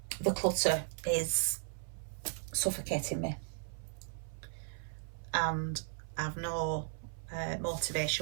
the clutter is suffocating me. And I've no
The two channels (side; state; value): left; silent; 54 dB below the other